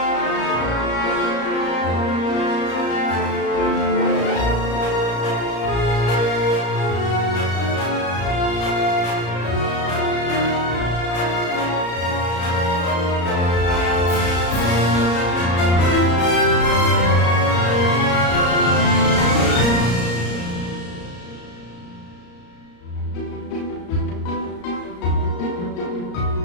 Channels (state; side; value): late; right; 34 ms